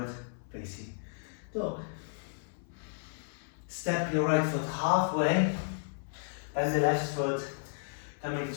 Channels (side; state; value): right; silent; 56 dB below the other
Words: facing dog. Step your right foot halfway, bend the left foot, coming